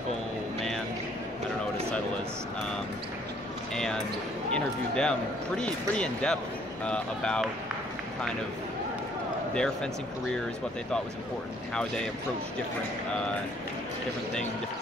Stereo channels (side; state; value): both; normal; correlation 0.62